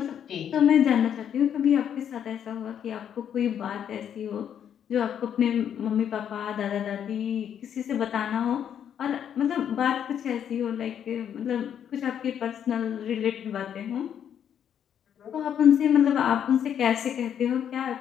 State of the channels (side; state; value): right; quieter; 9.0 dB